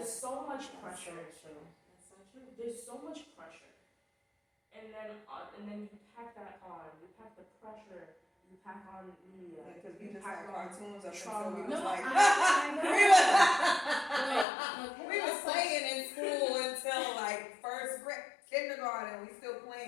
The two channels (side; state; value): right; drops out; at 14.5 s